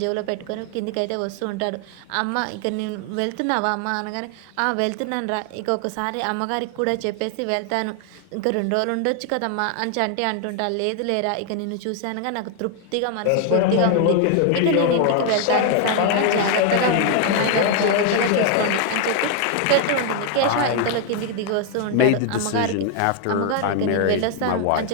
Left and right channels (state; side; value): different; both; correlation 0.00